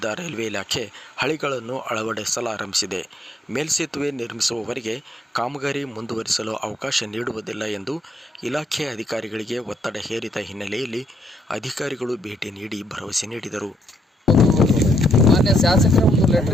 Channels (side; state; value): both; normal; correlation 0.74